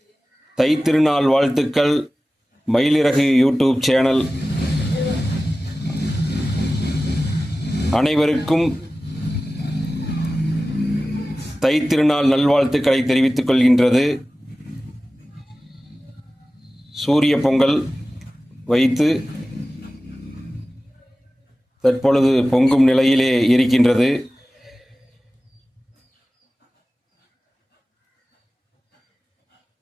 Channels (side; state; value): both; normal; correlation 0.96